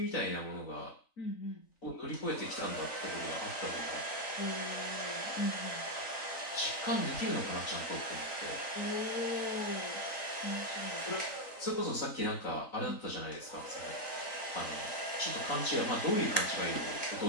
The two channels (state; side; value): late; right; 3.9 ms